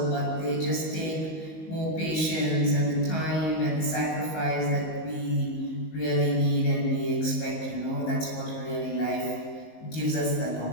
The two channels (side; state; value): right; late; 19 ms